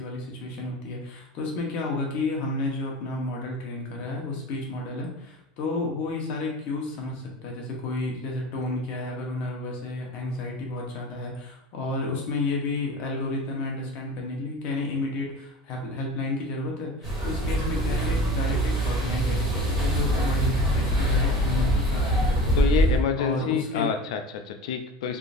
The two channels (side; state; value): both; normal; correlation 0.36